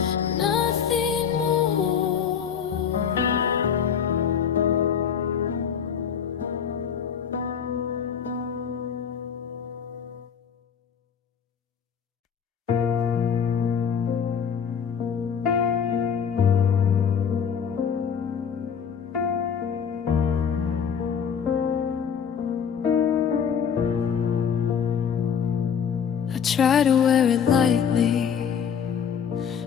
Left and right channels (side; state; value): right; quieter; 7.4 dB